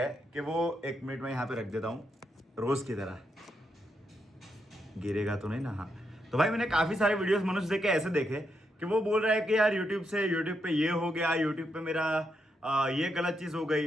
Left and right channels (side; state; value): both; normal; correlation 0.81